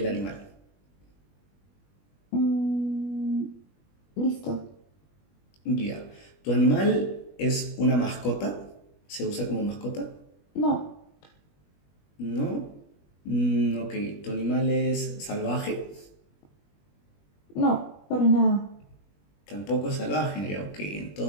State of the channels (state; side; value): late; right; 21 ms